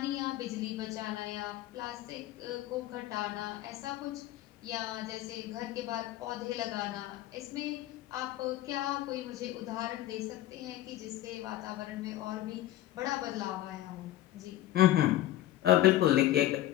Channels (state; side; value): quieter; right; 14.1 dB